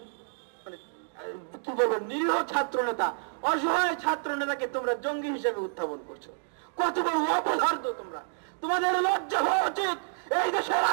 কি বলবো নিরীহ ছাত্র নেতা, অসহায় ছাত্র নেতাকে তোমরা জঙ্গি হিসেবে উত্থাপন করছো। কত বড় অপদার্থ তোমরা! তোমাদের লজ্জা হওয়া উচিত। এই দেশের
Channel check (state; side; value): silent; left; digital silence